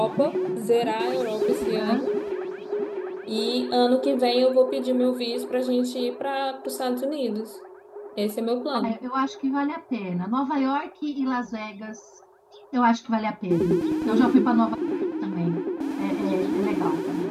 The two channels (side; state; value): both; identical; correlation 1.00